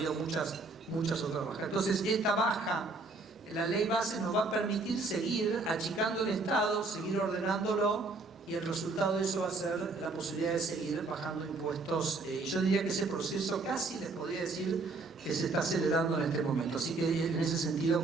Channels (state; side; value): quieter; left; 3.6 dB